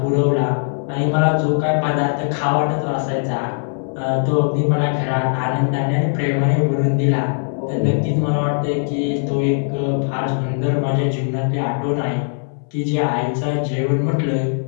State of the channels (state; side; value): silent; right; 63 dB below the other